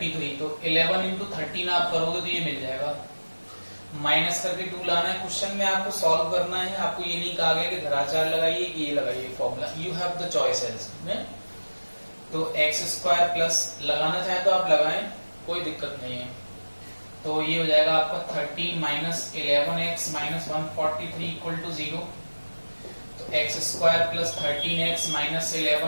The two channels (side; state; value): both; inverted; correlation -1.00